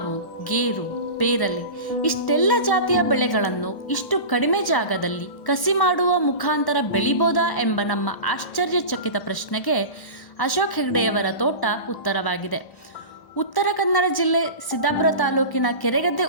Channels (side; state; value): right; late; 1.1 ms